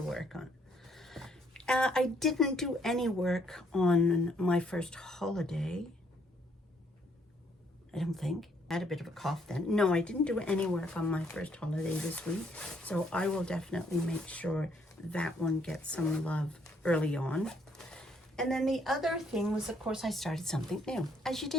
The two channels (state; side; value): normal; both; correlation 0.68